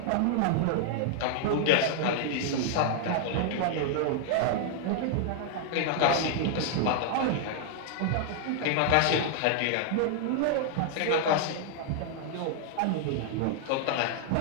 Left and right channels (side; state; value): both; different; correlation 0.00